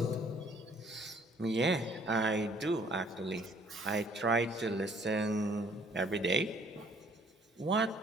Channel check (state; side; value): normal; both; correlation 0.60